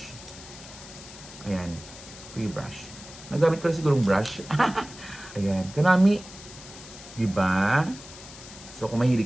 Ayan, free brush. Nagamit ko na sigurong brush. Ayan, kanami. Diba? So kung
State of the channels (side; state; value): left; noise; hiss, 16 dB below the sound